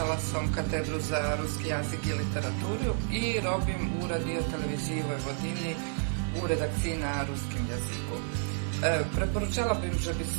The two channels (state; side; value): silent; left; 57 dB below the other